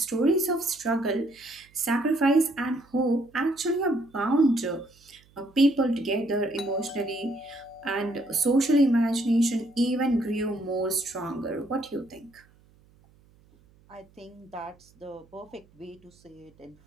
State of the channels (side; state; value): right; noise; hum, 30 dB below the sound